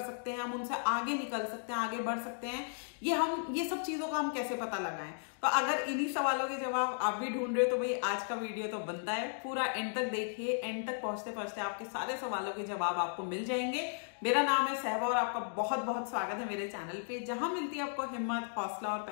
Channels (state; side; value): silent; right; digital silence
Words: हैं, हम उनसे आगे निकल सकते हैं, आगे बढ़ सकते हैं। ये सब चीजों का हम कैसे पता लगाएं? तो अगर इन्हीं सवालों के जवाब आप भी ढूंढ रहे हो तो भाई आज का वीडियो तो बनता है, पूरा एंड तक देखिए। एंड तक पहुंचते पहुंचते आपके सारे सवालों के जवाब आपको मिल जाएंगे। मेरा नाम है सहबा और आपका बहुत बहुत स्वागत है मेरे चैनल पे, जहां मिलती है आपको हिम्मत, हौसला और